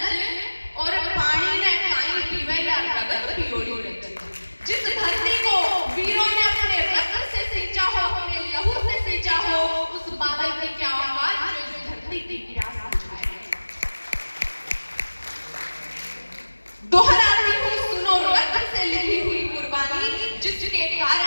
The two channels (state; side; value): inverted; both; correlation -1.00